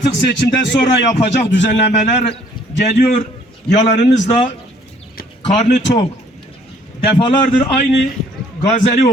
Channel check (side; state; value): both; normal; correlation 0.61